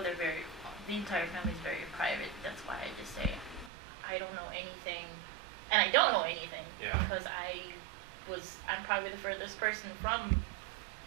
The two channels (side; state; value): left; drops out; at 3.7 s